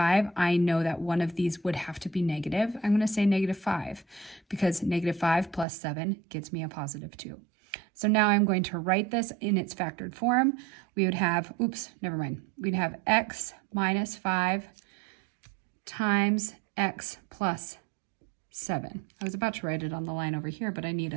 I know that one of these would have to be negative. I'm going to say -5, because -5 plus 7 gets me a positive 2. So now I'm going to write this in its factored form. We would have, we'd have x minus 5 times x plus 7. I was about to write it on the line over here, but I need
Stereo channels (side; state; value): left; drops out; at 5.7 s